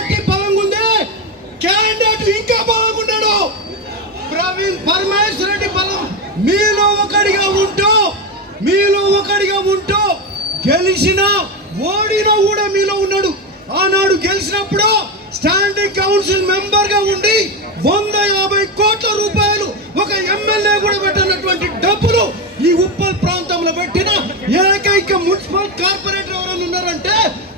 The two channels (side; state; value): both; normal; correlation 0.13